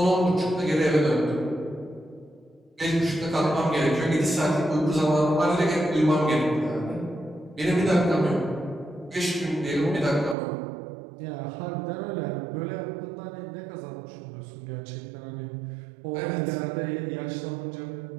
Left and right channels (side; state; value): left; drops out; at 10.4 s